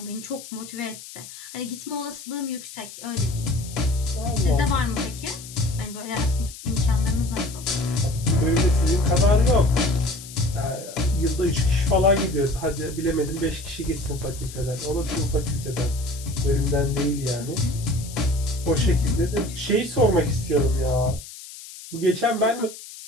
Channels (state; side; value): noise; left; hiss, 15 dB below the sound